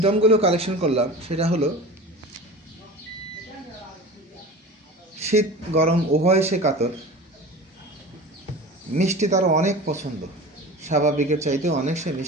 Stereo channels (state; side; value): normal; both; correlation 0.35